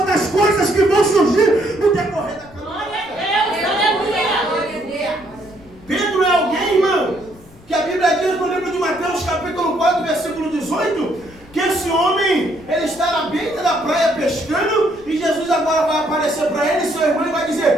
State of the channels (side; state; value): left; noise; rumble, 24 dB below the sound